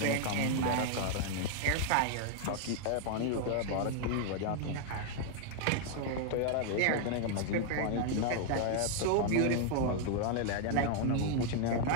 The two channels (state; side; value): different; both; correlation 0.00